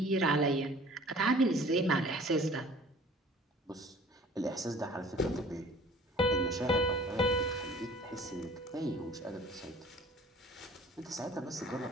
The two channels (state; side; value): normal; both; correlation 0.49